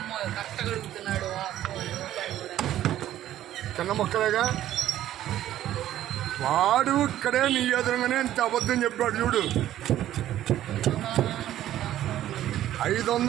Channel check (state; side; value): quieter; left; 12.7 dB